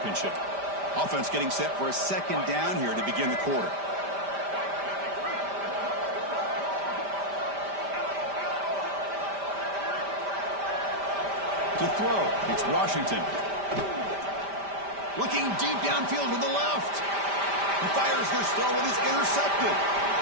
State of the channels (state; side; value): late; left; 5.1 ms